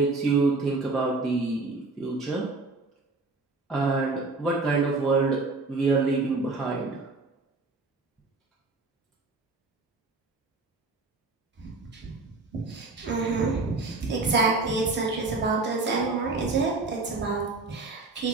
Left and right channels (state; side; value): quieter; left; 3.6 dB